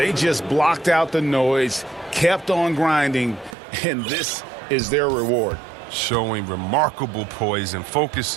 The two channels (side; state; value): left; drops out; at 3.6 s